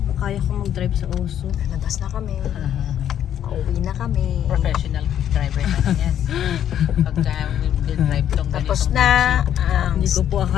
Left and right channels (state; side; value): quieter; right; 10.2 dB